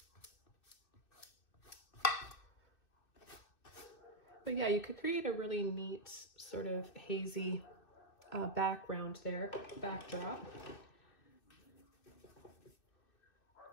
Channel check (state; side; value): late; right; 2.5 ms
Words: But yeah, you could create a really neat sort of hazy background there, backdrop.